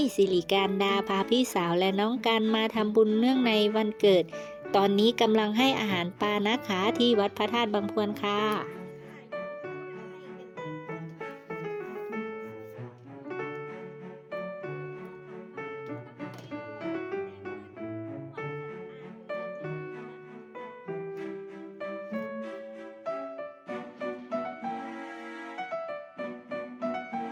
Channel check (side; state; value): both; identical; correlation 1.00